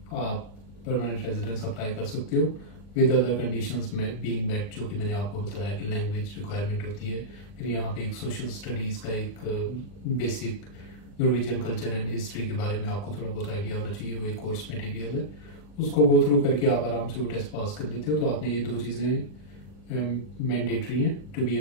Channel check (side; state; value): right; late; 40 ms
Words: आप परमानेंट रेजिडेंस अप्लाई कर सकते हो। विद अदर कंडीशंस में बीइंग मेट, जो कि मैंने आपको बताया कि लैंग्वेज रिक्वायरमेंट होती है। फिर यहाँ पे एक सोशल स्टडीज का एक basic Norwegian culture and history के बारे में आपको थोड़ा बहुत आइडिया होना चाहिए, वो एक कोर्स मटेरियल है, उसको गो थ्रू करके आप आराम से वो टेस्ट पास कर लेते हो। तो आपने ये 2 चीज़ें मैंडेटरी हैं to be